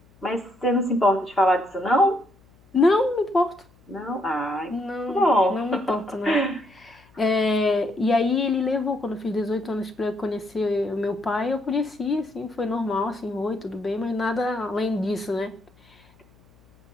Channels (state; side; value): noise; left; hum, 30 dB below the sound